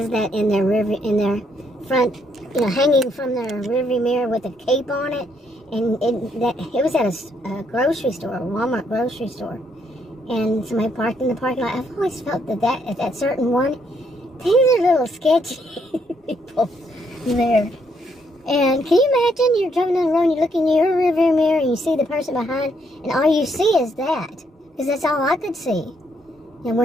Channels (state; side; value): normal; both; correlation 0.73